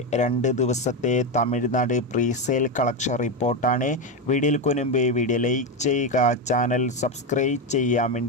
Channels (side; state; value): both; normal; correlation 0.11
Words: 2 ദിവസത്തെ തമിഴ്നാട് പ്രീസെയിൽ കളക്ഷൻ റിപ്പോർട്ടാണ്. വീഡിയോയ്ക്ക് മുൻപ് വീഡിയോ ലൈക്ക് ചെയ്യുക, ചാനൽ സബ്സ്ക്രൈബ് ചെയ്യാൻ